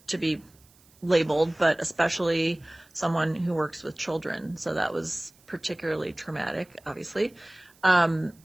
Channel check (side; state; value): right; noise; hiss, 30 dB below the sound